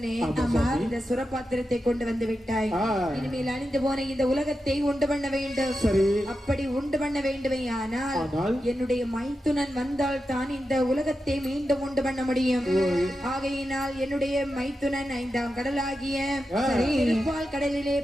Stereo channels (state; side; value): normal; both; correlation 0.89